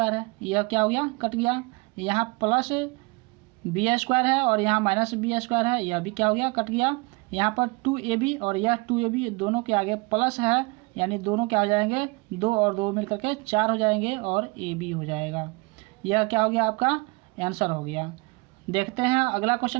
है, यह क्या हो गया, कट गया। यहाँ प्लस बी स्क्वायर है और यहाँ माइनस बी स्क्वायर है, यह भी क्या हो गया, कट गया। यहाँ पर 2ab और यह 2ab दोनों के आगे प्लस है, यानी दोनों क्या हो जाएंगे, 2 और 2 मिलकर के 4 हो जाएंगे और ab हो जाएगा। यह क्या हो गया, आपका आंसर हो गया। देखते हैं अगला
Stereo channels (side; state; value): left; quieter; 26.8 dB